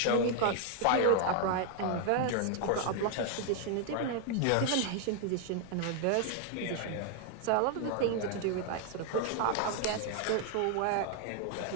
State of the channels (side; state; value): both; different; correlation 0.00